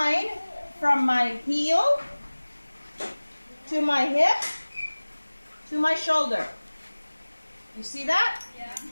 from my heel to my hip to my shoulder. You see that? Yeah.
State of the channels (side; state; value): both; inverted; correlation -1.00